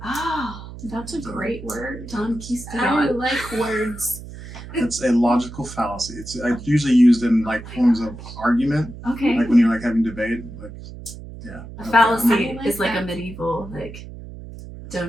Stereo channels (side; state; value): right; noise; hum, 13 dB below the sound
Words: Oh, That's a great word. Don I Quistadon. like words. It's a logical fallacy. It's usually used in like forms of argument, Okay. like when you're like having debate. Like, yeah. A Okay. fallacy I like is like a that. medieval, like,